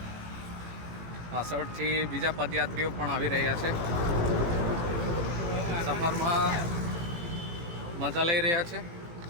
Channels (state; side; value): late; left; 18 ms